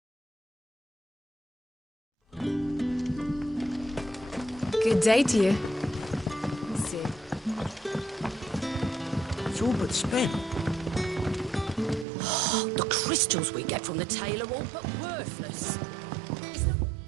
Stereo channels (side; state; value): left; drops out; at 12.1 s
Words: Good day to you. Let's see. It's all but spent. The crystals we get from the tail are all but worthless.